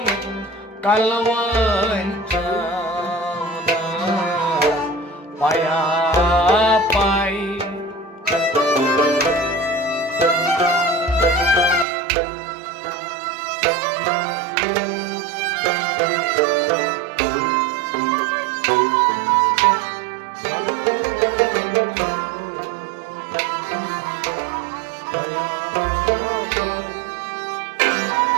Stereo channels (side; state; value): left; drops out; at 11.9 s